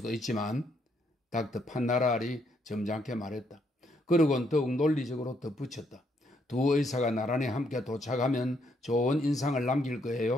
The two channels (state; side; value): normal; both; correlation 0.73